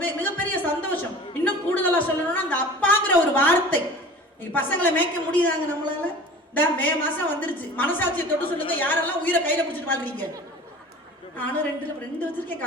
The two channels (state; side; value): normal; both; correlation 0.40